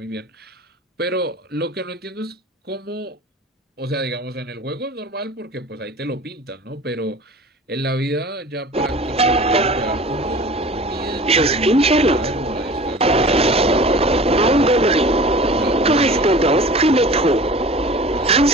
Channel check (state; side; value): normal; both; correlation 0.41